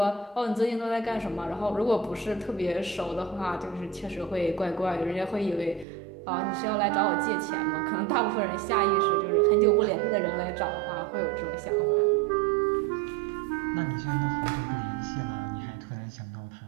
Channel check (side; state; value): left; drops out; at 5.9 s